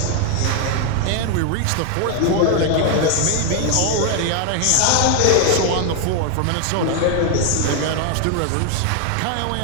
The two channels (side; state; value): both; different; correlation 0.01